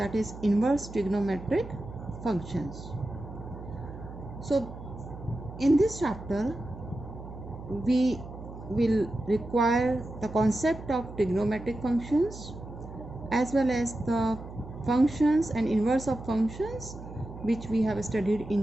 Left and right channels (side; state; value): right; noise; hum, 13 dB below the sound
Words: is inverse trigonometric functions. So in this chapter we will require the concept of trigonometric functions as well as the functions and inverse of functions which we have studied